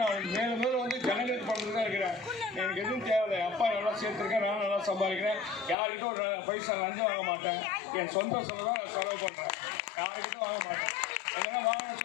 நான் மேலும் வந்து ஜனங்களுக்கு பண்ணுறது தான் இருக்கிறேன். எனக்கு எதுவும் தேவையில்லை. அப்பா நல்லா சேர்த்துருக்கேன், நானும் நல்லா சம்பாதிக்கிறேன். யாருக்கிட்ட ஒரு பைசா லஞ்சம் வாங்க மாட்டேன். என் சொந்த செலவு தான் நான் செலவு பண்ணுறேன். யாருக்கிட்டும் வாங்க மாட்டேன். எங்கன்னா வாங்கின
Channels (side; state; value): right; drops out; at 5.8 s